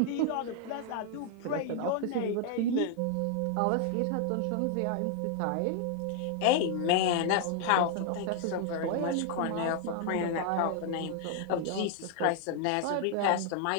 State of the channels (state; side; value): different; both; correlation 0.00